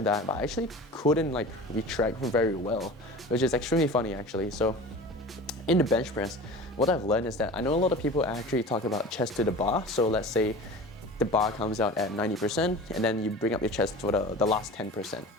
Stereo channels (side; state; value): both; normal; correlation 0.36